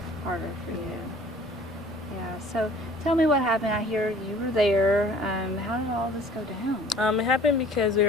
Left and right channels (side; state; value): both; normal; correlation 0.51